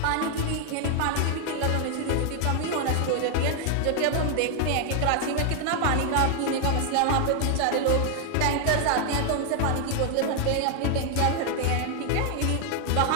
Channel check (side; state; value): both; different; correlation 0.00